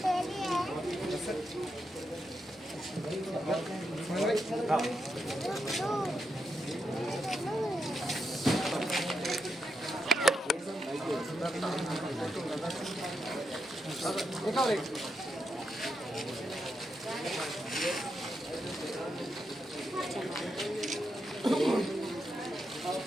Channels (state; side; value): normal; both; correlation 0.84